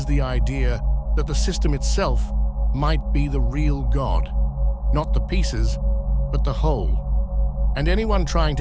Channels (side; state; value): both; identical; correlation 1.00